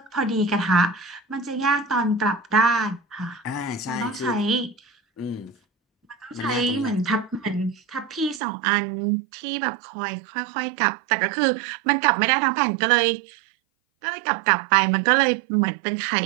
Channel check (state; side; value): drops out; left; at 8.4 s